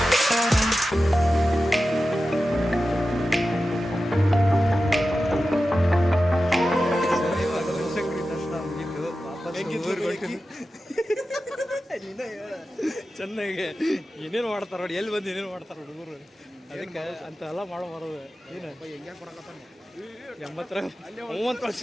ಚೆನ್ನಾಗಿ ಏನೇನು ಮಾಡ್ತಾರ ನೋಡಿ, ಎಲ್ಲಿ ಬಂದು ಏನೇನು ಮಾಡ್ತಾರ ಹುಡುಗರು, ಅದಕ್ಕೆ ಅಂತ ಎಲ್ಲ ಮಾಡೋ ಬರೋದು ಏನು ಹೆಂಗೆ ಕೊಡಕತ್ತಾನ 30 ವರ್ಷ.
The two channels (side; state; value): both; normal; correlation 0.93